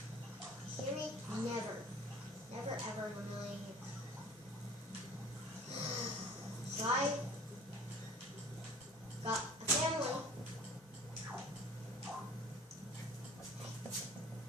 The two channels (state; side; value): normal; both; correlation 0.47